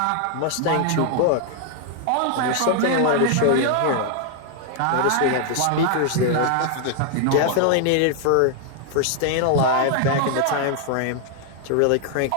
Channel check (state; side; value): different; both; correlation 0.00